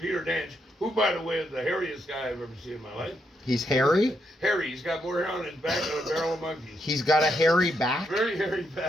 Peter Danch, who, by the way, is the hairiest guy I've ever seen in my life. He's hairy? Hairy. He's got more hair on his back than a barrel of monkeys. He's got a hairy back? Very hairy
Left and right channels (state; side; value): normal; both; correlation 0.79